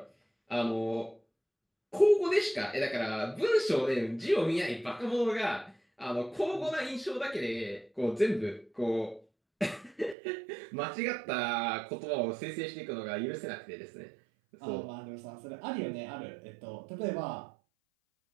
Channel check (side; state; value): left; drops out; at 10.2 s